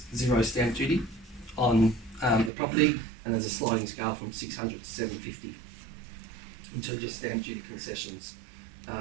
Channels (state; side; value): drops out; left; at 2.5 s